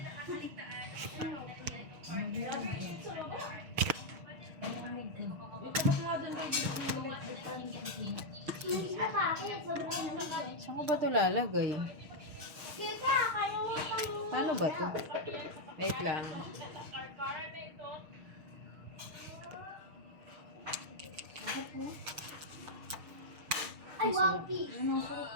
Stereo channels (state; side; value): late; left; 6.5 ms